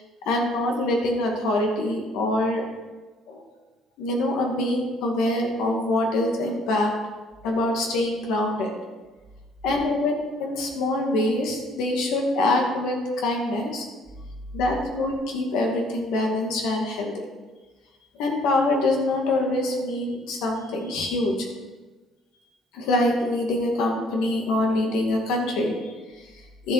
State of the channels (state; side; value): normal; both; correlation 0.61